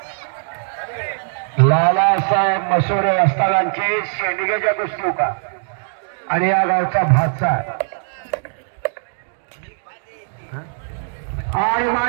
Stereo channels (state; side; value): silent; left; digital silence